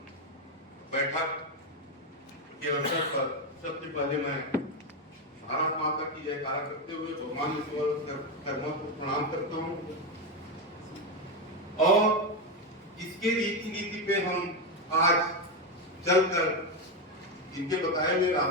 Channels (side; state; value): both; normal; correlation 0.09